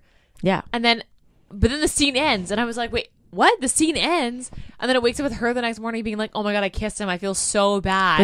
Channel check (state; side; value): identical; both; correlation 1.00